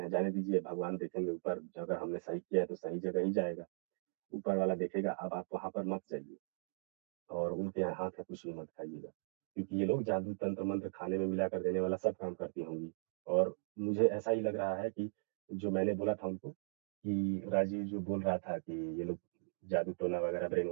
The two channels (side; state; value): left; silent; digital silence